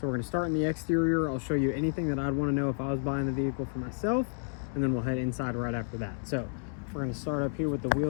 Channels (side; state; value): right; silent; digital silence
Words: we're going to start in the exterior. I'll show you anything that I'd want to know if I was buying the vehicle for myself, and then we'll head inside right after that. So we're going to start up here with the